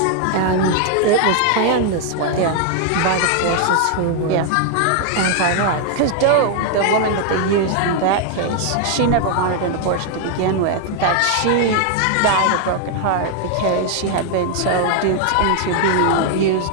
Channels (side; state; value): both; different; correlation 0.00